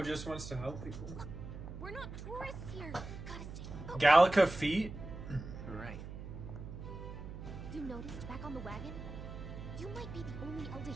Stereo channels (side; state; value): right; noise; hum, 9 dB below the sound